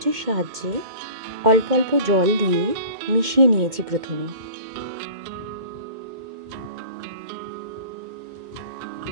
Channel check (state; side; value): late; left; 2.1 ms